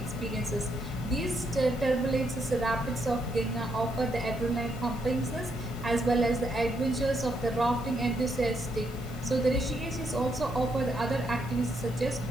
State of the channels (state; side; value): normal; both; correlation 0.77